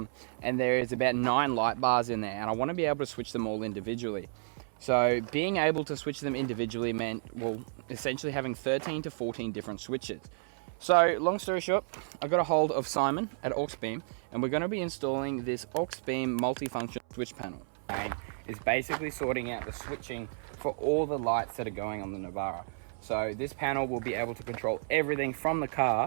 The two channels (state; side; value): silent; left; 57 dB below the other